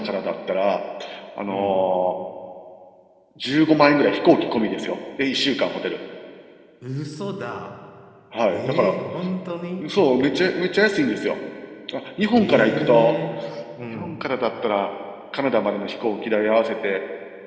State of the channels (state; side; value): identical; both; correlation 1.00